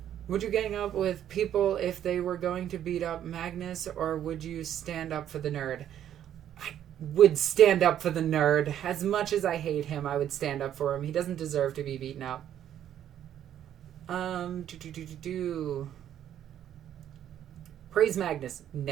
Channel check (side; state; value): left; quieter; 10.6 dB